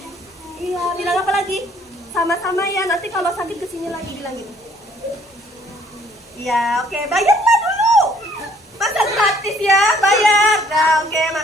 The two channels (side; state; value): both; normal; correlation 0.61